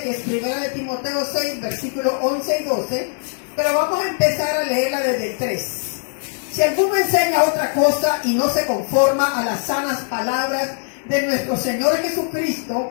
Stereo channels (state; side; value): silent; right; 65 dB below the other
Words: que es 1 de Timoteo 6, versículos 11 y 12, pero vamos a empezar a leerla desde el 3. Si alguno enseña otra cosa y no se conforma a las sanas palabras de nuestro Señor